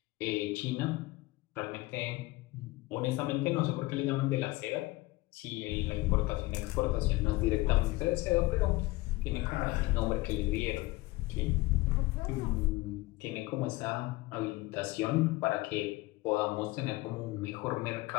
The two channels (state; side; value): quieter; right; 20.6 dB